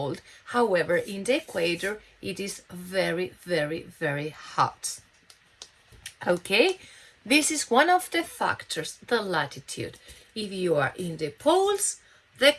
However, in the equator, it is very, very, very hot. Okay, this is one of the factors, the latitude. If you are in the poles, the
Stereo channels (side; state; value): both; identical; correlation 1.00